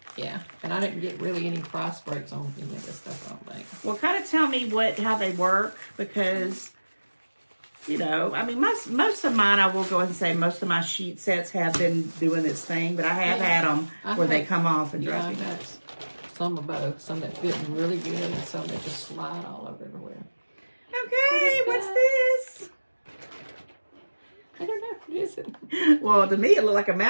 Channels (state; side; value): inverted; both; correlation -1.00